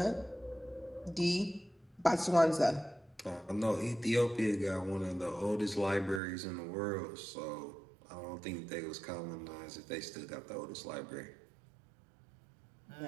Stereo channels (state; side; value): drops out; left; at 6.2 s